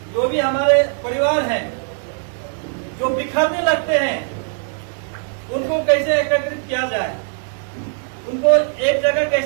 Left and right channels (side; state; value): left; silent; 66 dB below the other